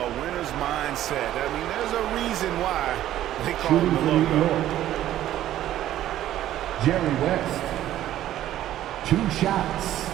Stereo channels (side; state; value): left; quieter; 12.8 dB